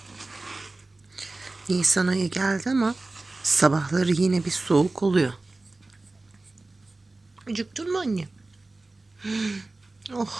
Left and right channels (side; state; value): left; quieter; 3.2 dB